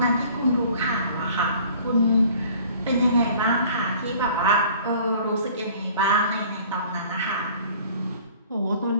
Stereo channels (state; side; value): inverted; both; correlation -0.50